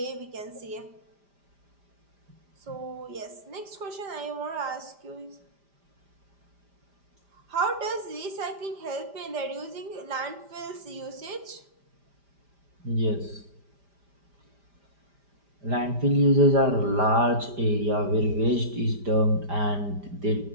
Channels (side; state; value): left; late; 5.0 ms